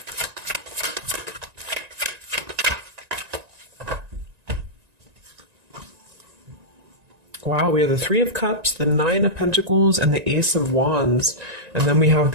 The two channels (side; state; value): left; late; 1.9 ms